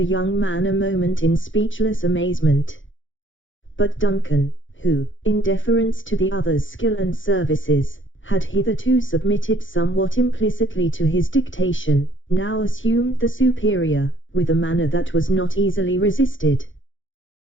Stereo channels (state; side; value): late; right; 0.56 ms